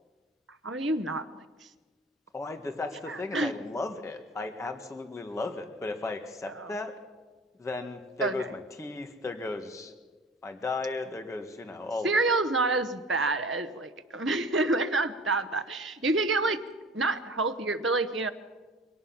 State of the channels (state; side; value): normal; both; correlation 0.43